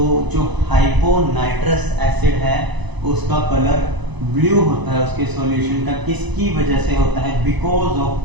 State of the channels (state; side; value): late; left; 1.0 ms